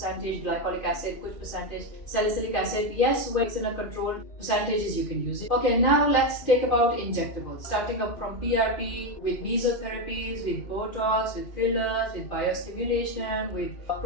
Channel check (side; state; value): right; late; 2.5 ms